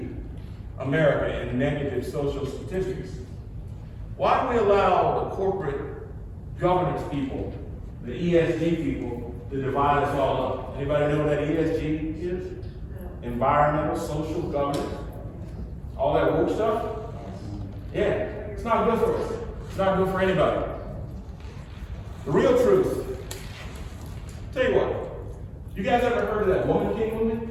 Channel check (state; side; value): identical; both; correlation 1.00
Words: America in negative social statistics? Why do we allow the corporate governance people, the ESG people, to divide us all up? Anybody know what that ESG is? Environmental, social governance. All that woke stuff? Yeah, it's not good for us. It's not good for anybody. The real truth. Tell you what, you guys ever heard of that Woman King movie?